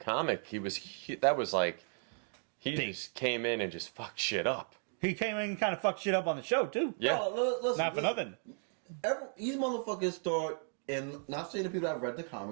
He just came in and just fucked shit up. He came in and kind of fucked shit up on the show, too. Yeah. Not for nothing. These motherfuckers thought, and not saying the people that have read the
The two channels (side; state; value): left; silent; 54 dB below the other